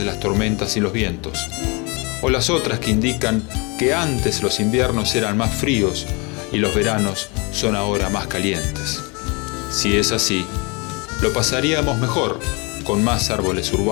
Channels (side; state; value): right; quieter; 29.6 dB